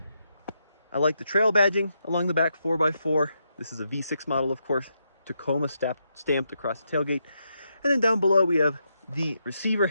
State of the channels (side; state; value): both; inverted; correlation -0.82